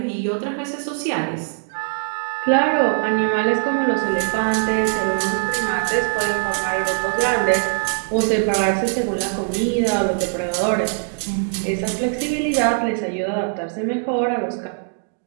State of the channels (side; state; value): left; silent; digital silence